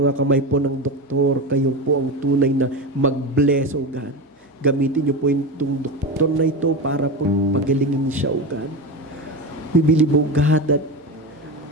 mga kamay po ng doktor, kayo po ang tunay na mag-bless, O God. Gamitin niyo po itong doktor na ito para po pagalingin siya, O God. We believe, O God, that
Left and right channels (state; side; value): normal; both; correlation 0.21